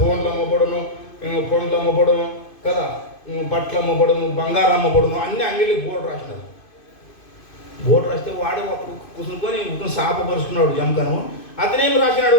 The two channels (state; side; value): late; right; 2.5 ms